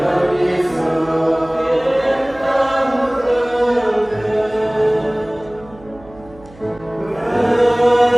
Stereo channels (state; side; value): noise; right; hum, 22 dB below the sound